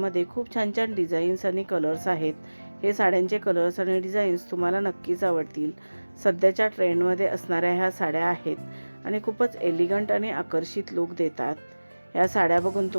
खूप छान छान डिझाईन्स आणि कलर्स आहेत. हे साड्यांचे कलर्स आणि डिझाईन्स तुम्हाला नक्कीच आवडतील. सध्याच्या ट्रेंडमध्ये असणाऱ्या ह्या साड्या आहेत आणि खूपच एलिगंट आणि आकर्षित लुक देतात. ह्या साड्या बघून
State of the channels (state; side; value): inverted; both; correlation -1.00